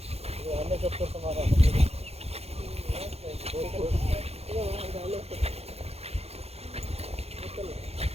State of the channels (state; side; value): late; left; 0.30 ms